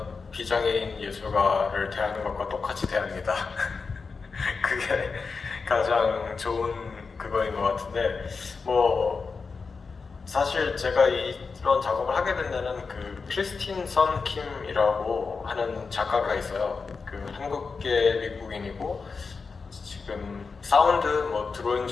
비장애인 예술가를 대하는 것과 똑같이 대합니다. 그게 가장 좋은 그거인 것 같은데, 사실 제가 이런 작업을 하게 된 데는 그 크리스틴 선 킴이라고 하는 작가가 있어요. 그 한국계 미국인이고 지금 사운드 드로잉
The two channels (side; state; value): right; quieter; 4.8 dB